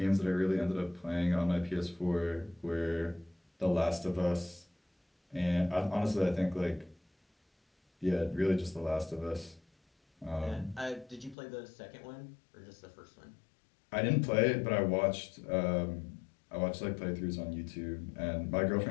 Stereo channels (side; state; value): right; drops out; at 11.4 s